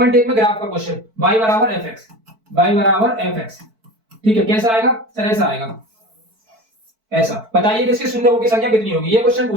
में ग्राफ का क्वेश्चन, y बराबर fx। ठीक है, कैसा आएगा सर, ऐसा आएगा, ऐसा। बताइए कि इसके शून्यों की संख्या कितनी होगी। ये क्वेश्चन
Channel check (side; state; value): left; late; 4.5 ms